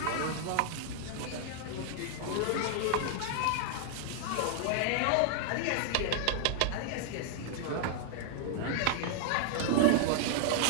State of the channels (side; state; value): both; different; correlation -0.01